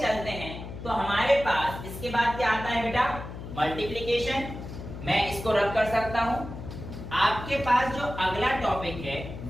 हैं तो हमारे पास इसके बाद क्या आता है बेटा, मल्टीप्लीकेशन। मैं इसको रख कर सकता हूं। आपके पास जो अगला टॉपिक है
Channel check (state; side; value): noise; left; hum, 10 dB below the sound